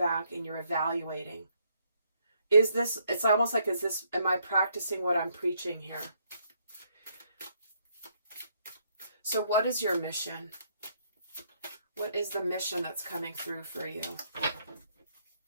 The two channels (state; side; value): inverted; both; correlation -0.71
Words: and you're evaluating. It's almost like, am I practicing what I'm preaching here? So what is your mission? What is the mission that's coming through for you?